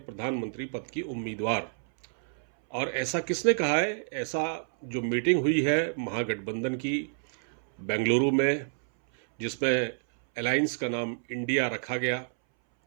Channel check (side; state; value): left; silent; 59 dB below the other